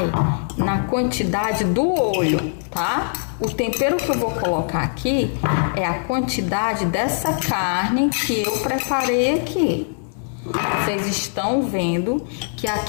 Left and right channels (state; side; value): silent; right; 60 dB below the other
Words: na quantidade do olho, tá? O tempero que eu vou colocar aqui é a quantidade dessa carne que eu preparei aqui. Vocês estão vendo que